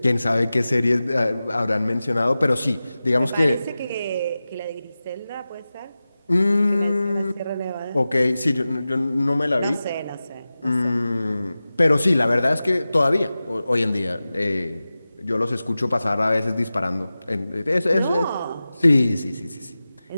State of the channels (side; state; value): both; inverted; correlation -0.95